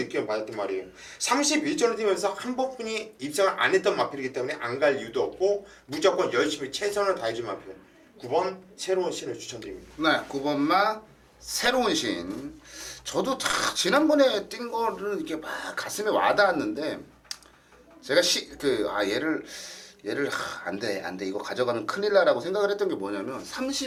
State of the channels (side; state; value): both; identical; correlation 1.00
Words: 받았단 말이에요. 31전을 뛰면서 한 번뿐이 입상을 안 했던 마필이기 때문에 안 갈 이유도 없고 무조건 열심히 최선을 다해준 마필 9번 새로운 신을 추천드립니다. 네, 9번마 새로운 신. 저도 다 지난번에 뛴 거를 이렇게 막 가슴에 와닿았는데 제가 얘를 안돼 이거 가져가면 큰일 나라고 생각을 했던 게 뭐냐면